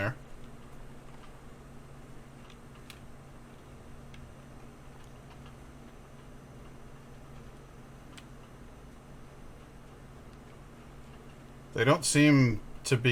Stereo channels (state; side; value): identical; both; correlation 1.00